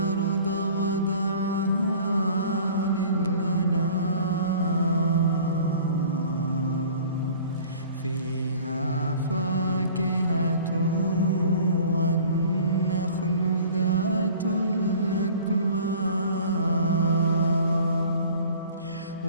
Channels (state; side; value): inverted; both; correlation -0.47